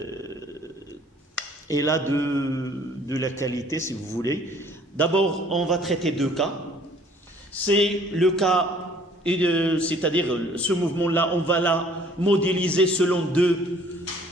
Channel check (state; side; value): normal; both; correlation 0.57